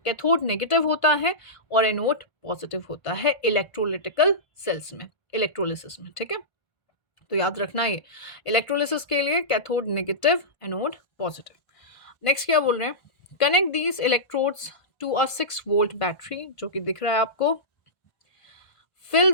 कैथोड नेगेटिव होता है और एनोड पॉजिटिव होता है इलेक्ट्रोलिटिकल सेल्स में, इलेक्ट्रोलिसिस में, ठीक है। तो याद रखना ये इलेक्ट्रोलिसिस के लिए cathode negative, anode positive. Next क्या बोल रहे हैं, connect these electrodes to a 6 volt battery, जो कि दिख रहा है आपको। Fill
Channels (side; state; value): right; late; 1.5 ms